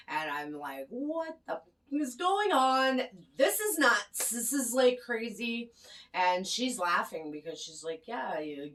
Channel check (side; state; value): both; identical; correlation 1.00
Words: And I'm like, what the is going on? This is nuts. This is like crazy. And she's laughing because she's like, yeah,